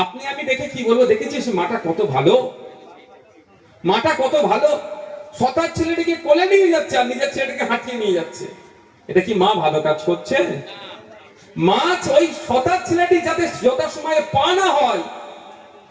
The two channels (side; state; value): both; identical; correlation 1.00